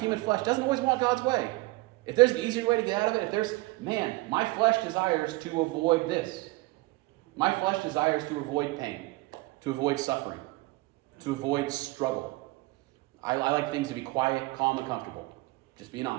flesh doesn't always want God's way. If there's an easier way to get out of it, my flesh desires to avoid this. My flesh desires to avoid pain, to avoid suffering, to avoid struggle. I like things to be quiet, calm, and comfortable. Just being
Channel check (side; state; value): left; quieter; 21.8 dB